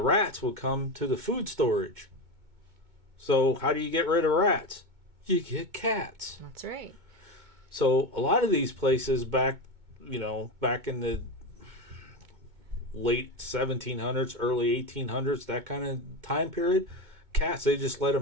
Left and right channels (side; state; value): left; late; 2.2 ms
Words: rats would come to the food storage. So how do you get rid of rats? You get cats. That's right. So a lot of these places back in the late 1700s, early 1800s, that kind of time period, cats, they just let